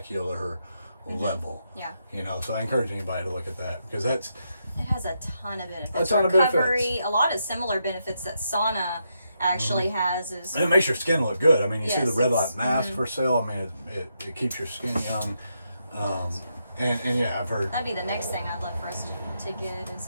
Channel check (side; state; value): both; inverted; correlation -0.81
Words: level. Yeah. You know, so I encourage anybody to look at that because it has a ton of benefits. A ton of benefits. A lot of similar benefits that sauna actually has is, and it makes your skin look good. I mean, you see the red light mask for sale. I mean, it keeps your skin young. And yeah, I've heard that'd be the next thing I'd love for us to get